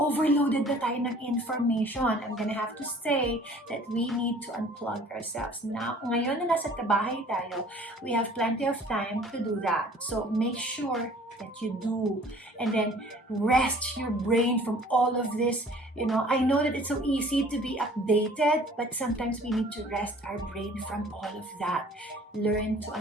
na tayo ng information. I'm gonna have to say that we need to unplug ourselves. Now, ngayon na nasa kabahay tayo, we have plenty of time to do that. So make sure that you do, and then rest your brain from all of this. I know that it's so easy to be updated, but sometimes we need to rest our brain from all of that. Learn to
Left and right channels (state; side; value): normal; both; correlation 0.51